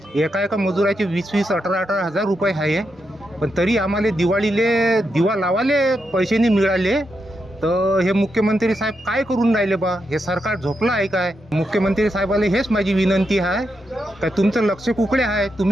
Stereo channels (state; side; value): normal; both; correlation 0.84